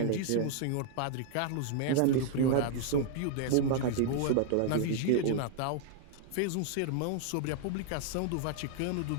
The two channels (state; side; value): different; both; correlation 0.00